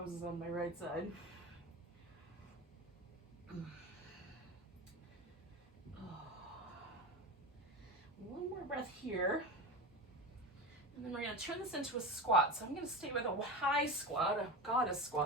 on my right side. One more breath here. And then we're going to turn this into a squat. So I'm going to stay with a high squat, a goddess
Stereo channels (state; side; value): normal; both; correlation 0.25